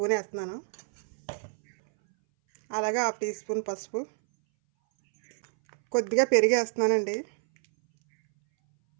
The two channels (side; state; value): left; silent; 60 dB below the other